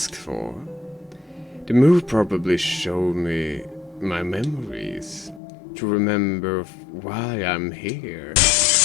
for. The move probably showed me my memories, to remember why I'm here.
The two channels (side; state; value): right; drops out; at 5.4 s